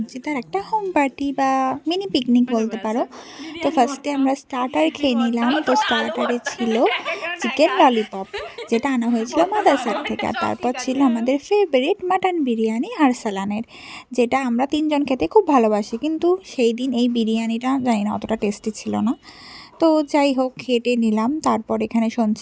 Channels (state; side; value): identical; both; correlation 1.00